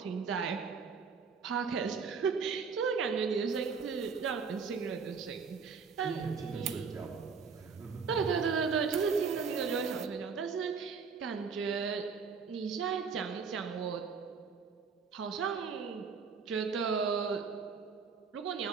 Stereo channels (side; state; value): left; quieter; 5.6 dB